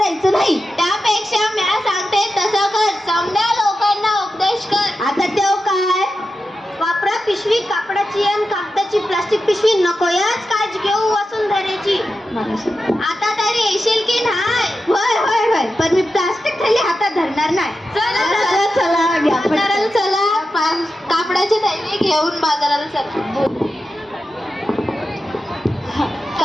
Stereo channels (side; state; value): both; normal; correlation 0.91